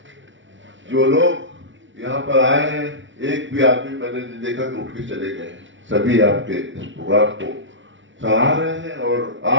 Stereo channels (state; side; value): late; left; 0.55 ms